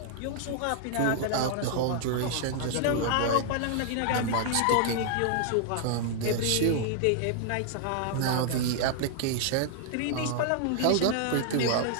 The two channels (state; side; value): different; both; correlation 0.00